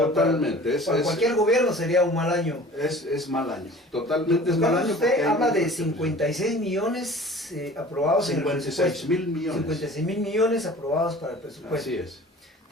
Para cualquier gobierno sería un mal año. Es mal año, totalmente es mal año. Usted habla de 56 millones aprobados 56.000 millones. 56.000 millones aprobados para el presupuesto. Así es.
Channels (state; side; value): normal; both; correlation 0.44